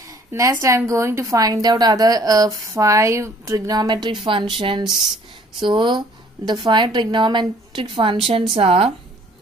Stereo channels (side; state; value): both; normal; correlation 0.57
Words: Next I am going to find out other 5 trigonometric functions. So the 5 trigonometric functions are